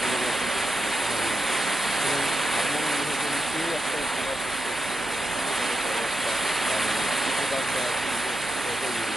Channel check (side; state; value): both; normal; correlation 0.88